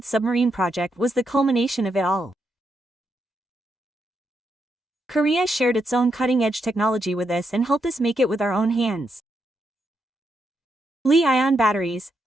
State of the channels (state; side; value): normal; both; correlation 0.81